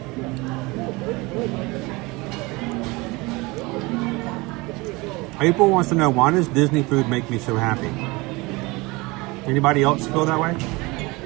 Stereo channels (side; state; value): left; quieter; 24.0 dB